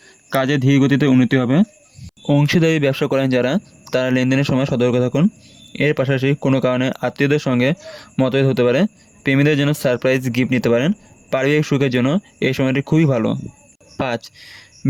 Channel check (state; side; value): identical; both; correlation 1.00